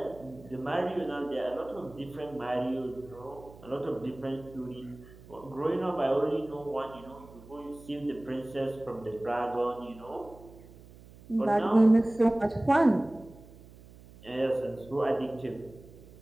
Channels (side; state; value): right; noise; hum, 20 dB below the sound